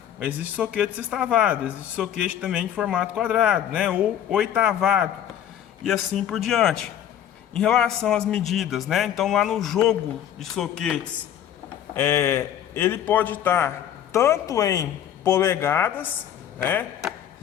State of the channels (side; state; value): right; quieter; 10.1 dB